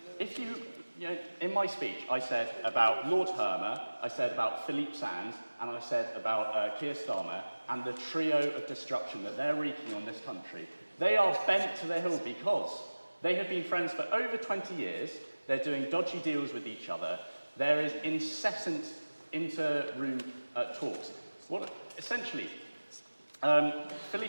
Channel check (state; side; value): inverted; both; correlation -1.00